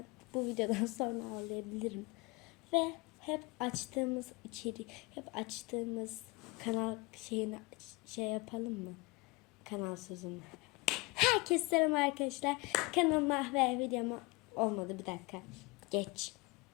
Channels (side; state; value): right; quieter; 24.9 dB